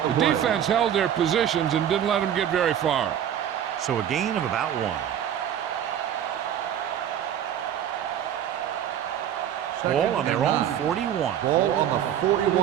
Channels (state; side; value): quieter; left; 9.9 dB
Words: The defense held their positions and didn't let them get very far. So a gain of about 1. Ball on their own 41. Ball on the